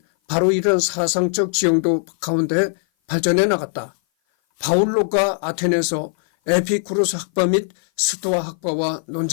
바로 이런 사상적 지형도 가운데 발전해 나갔다. 바울로가 아테네에서 에피쿠로스 학파 및 스토아 학파와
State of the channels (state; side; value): silent; right; 57 dB below the other